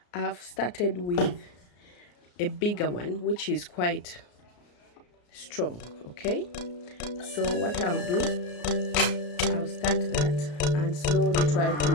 I've started with a bigger one, which is quite strong. Okay, so what I'll do, I'll start that and slowly try to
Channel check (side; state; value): right; late; 34 ms